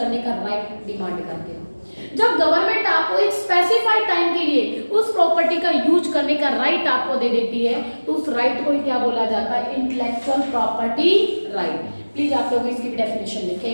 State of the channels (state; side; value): inverted; both; correlation -1.00